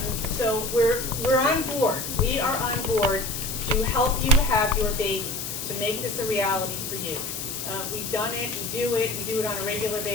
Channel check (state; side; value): noise; left; hiss, 5 dB below the sound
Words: So we're on board. We are on board to help you have your baby, to make this a reality for you. We've done it, we do it on a regular